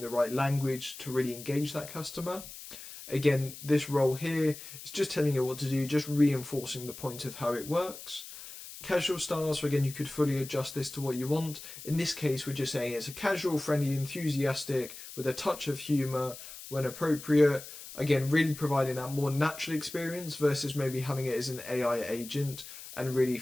the right language to really engage that customer. Again, this role here is just telling you what to do, just reinforcing the point of how it works. Casual style, so again, you could fully adjust this to what you want. In this case, we're just saying it's a casual, friendly, enthusiastic with a touch of humor when appropriate. Again, really providing that more natural experience versus maybe having it as an AI agent and really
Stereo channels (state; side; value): noise; left; hiss, 13 dB below the sound